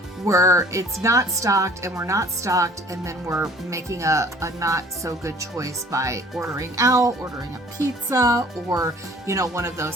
where it's not stocked and we're not stocked, and then we're making a not so good choice by ordering out, ordering a pizza, or one of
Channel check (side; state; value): both; normal; correlation 0.51